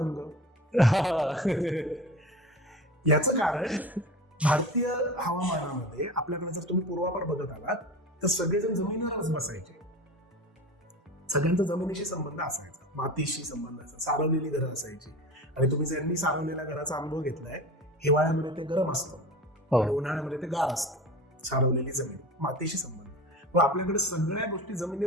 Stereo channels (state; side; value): normal; both; correlation 0.33